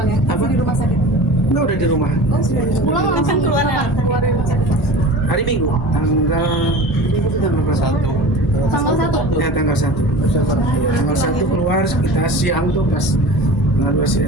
ya? Apa? Masih di rumah sakit. Enggak, udah di rumah. Oh sudah di rumah. Pulang langsung keluar ya? keluar dari rumah sakit. Hari Minggu, tanggal Minggu itu tanggal berapa? Tanggal 1. Ya tanggal 1. Tanggal 1 keluar, kita siang tuh pas tanggal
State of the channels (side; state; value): both; normal; correlation 0.36